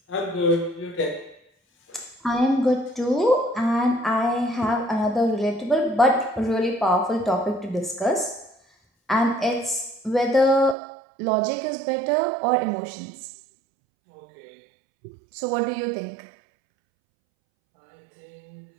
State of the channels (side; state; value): left; drops out; at 10.8 s